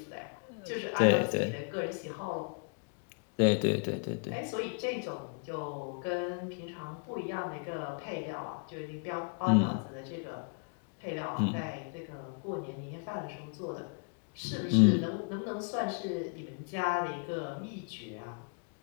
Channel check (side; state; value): right; quieter; 40.0 dB